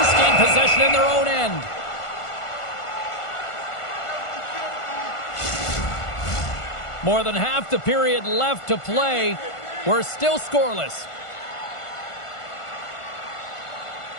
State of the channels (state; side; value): late; right; 1.5 ms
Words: gain possession in their own end. More than half the period left to play. We're still scoreless.